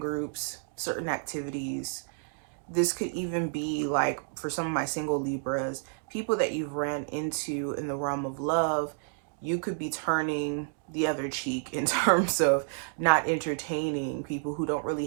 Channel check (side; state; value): left; silent; digital silence